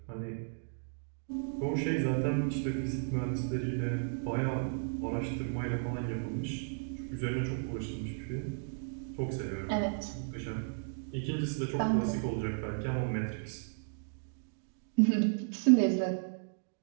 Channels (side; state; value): left; silent; digital silence